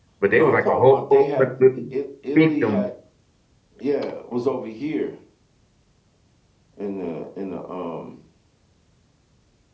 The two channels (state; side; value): identical; both; correlation 1.00